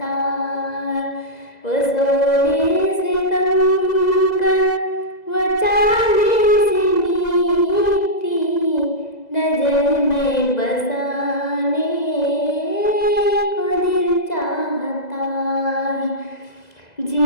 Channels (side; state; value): right; late; 2.0 ms